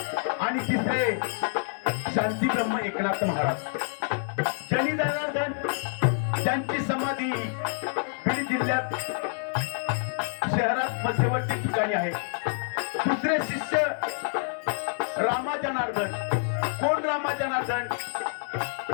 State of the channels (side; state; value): right; silent; digital silence